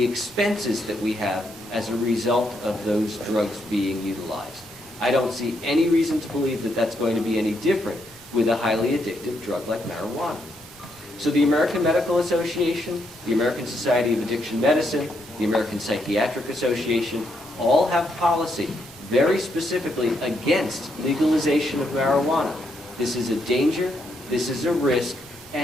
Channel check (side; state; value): both; normal; correlation 0.77